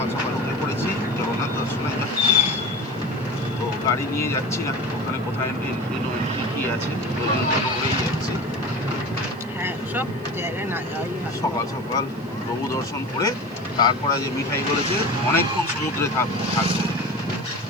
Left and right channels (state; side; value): noise; right; hiss, 28 dB below the sound